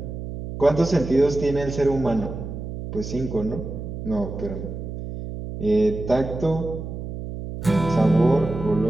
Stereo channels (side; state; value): right; noise; hum, 8 dB below the sound